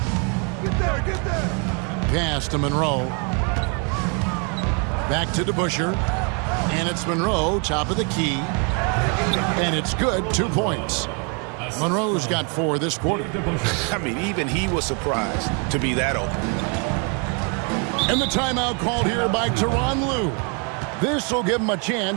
Get there. Pass to Monroe. Back to DeBuscher. And it's Monroe, top of the key. And it's good, 2 points. Monroe's got 4 this quarter. I mean, even he was surprised to be that open. And the timeout called here by Tyronn Lue. This will give him a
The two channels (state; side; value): quieter; left; 36.4 dB